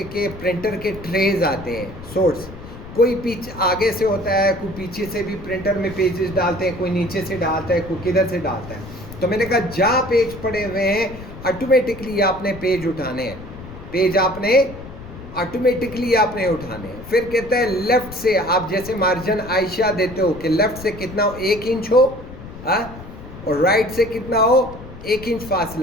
के प्रिंटर के ट्रेज आते हैं, सोर्स, कोई पीछे आगे से होता है, कोई पीछे से भी प्रिंटर में पेजेस डालते हैं, कोई नीचे से डालता है, कोई किधर से डालता है। तो मैंने कहा जहाँ पेज पड़े हुए हैं ऑटोमेटिकली आपने पेज उठाने हैं, पेज आपने ऑटोमेटिकली आपने उठाने हैं। फिर कहता है लेफ़्ट से, आप जैसे मार्जिन आयशा देते हो कि लेफ़्ट से कितना हो, 1 इंच हो, और राइट से कितना हो, 1 इंच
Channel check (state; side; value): noise; left; rumble, 14 dB below the sound